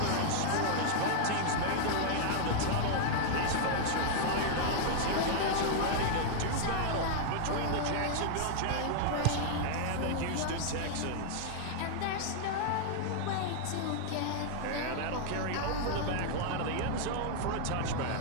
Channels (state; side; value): different; both; correlation -0.01